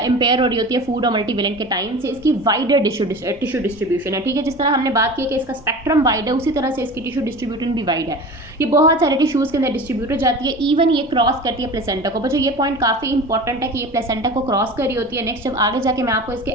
इम्पेयर हो रही होती है फूड और मल्टीवेलेंट के टाइम से। इसकी वाइडर टिश्यू डिस्ट्रीब्यूशन है, ठीक है। जिस तरह हमने बात की कि इसका स्पेक्ट्रम वाइड है, उसी तरह से इसकी टिश्यू डिस्ट्रीब्यूशन भी वाइड है। ये बहुत सारे टिश्यूज़ के अंदर डिस्ट्रीब्यूट हो जाती है, इवन ये क्रॉस करती है प्लेसेंटा को। बच्चों ये पॉइंट काफ़ी इंपॉर्टेंट है कि ये प्लेसेंटा को क्रॉस कर रही होती है। नेक्स्ट जब आगे जाके मैं आपको इसके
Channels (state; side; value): normal; both; correlation 0.35